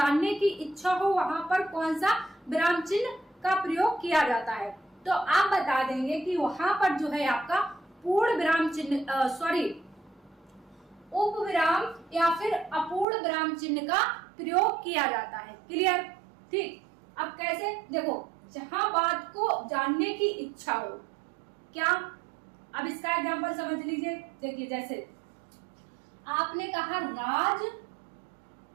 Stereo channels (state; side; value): drops out; left; at 13.1 s